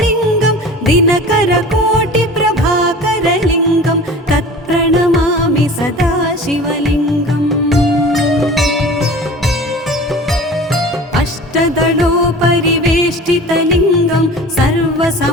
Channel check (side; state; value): both; normal; correlation 0.40